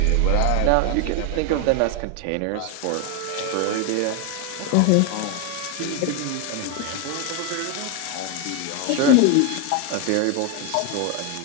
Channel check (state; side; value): different; both; correlation 0.01